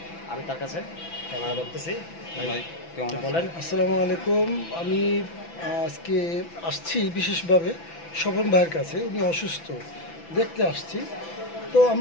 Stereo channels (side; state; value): right; late; 6.0 ms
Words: আমি তার কাছে ক্যামেরা ধরতেছি। ভাই কেমন বলেন? আসসালামু আলাইকুম। আমি আজকে আসছি বিশেষভাবে স্বপন ভাইয়ের কাছে। উনি অসুস্থ, দেখতে আসছি। তো